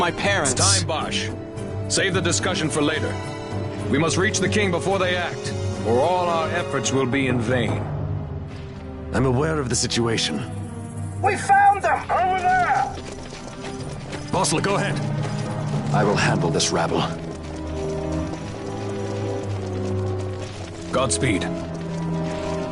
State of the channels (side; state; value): both; identical; correlation 1.00